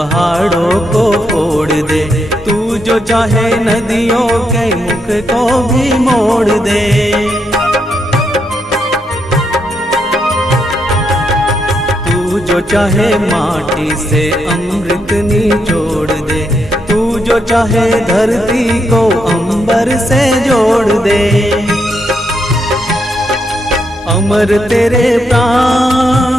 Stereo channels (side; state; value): both; normal; correlation 0.80